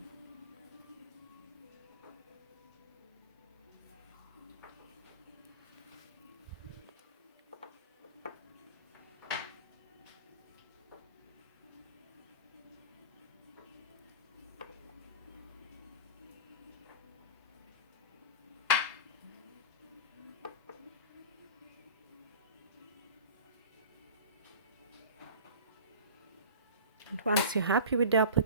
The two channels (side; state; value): both; inverted; correlation -0.36